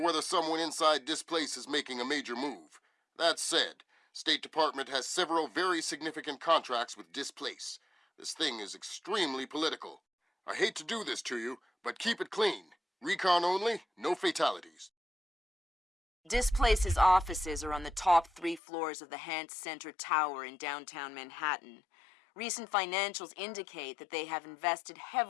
whether someone inside this place is making a major move. That said, State Department has several very significant contracts with Displace. This thing is extremely political. I hate to do this to you, but keep it clean. Recon only, no fatalities. Displace's offices are on the top 3 floors of the Hance Center Tower in downtown Manhattan. Recent financials indicate that they have invested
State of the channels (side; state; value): right; drops out; at 18.6 s